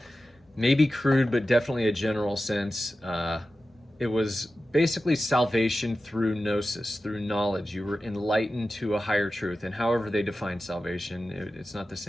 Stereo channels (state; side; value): normal; both; correlation 0.93